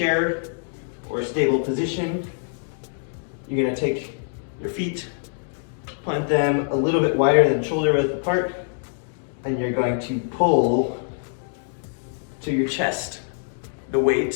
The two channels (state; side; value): silent; right; digital silence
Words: or a stable position. You're gonna take your feet, plant them a little bit wider than shoulder width apart, and you're going to pull to your chest, the